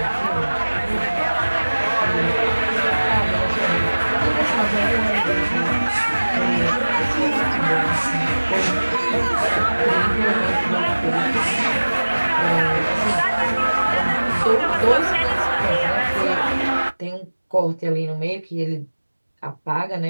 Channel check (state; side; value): inverted; both; correlation -1.00